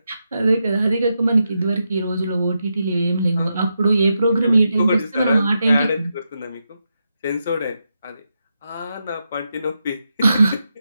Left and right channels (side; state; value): both; inverted; correlation -0.86